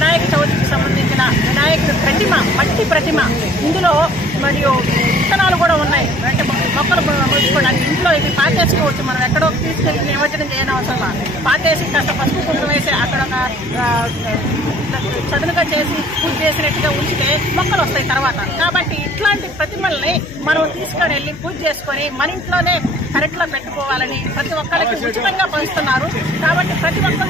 చవితికి సంబంధించిన వినాయకుడి ప్రతిమ, మట్టి ప్రతిమ, ఇందులో మరియు విత్తనాలు కూడా ఉన్నాయి. అంటే మొక్కలు మొలుచుకోవడానికి ఇంట్లో ఇది పాతేసుకోవచ్చు. మనం ఎక్కడో తీసుకెళ్లి నిమజ్జనం చేయని అవసరం. పాతేసి కాస్త పసుపు కుంకుమ వేసి అక్కడ చదునుగా చేసి పూజ చేసినట్టుగా ఉంచితే మొక్కలు వస్తాయి తర్వాత. కాబట్టి ఇట్లాంటి ప్రతిమల్ని మనం తీసుకొని వెళ్ళి పూజ చేసుకొని మన ఇంట్లోనే కరెక్ట్ లో పెట్టుకోవాలని ప్రతి ఒక్కరికి ఉచితంగా పంచుతున్నారు. కాబట్టి ప్రతి ఒక్కరు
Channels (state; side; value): noise; left; hum, 18 dB below the sound